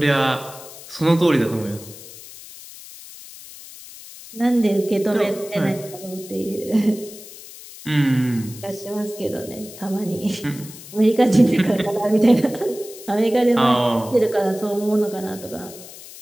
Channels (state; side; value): noise; left; hiss, 16 dB below the sound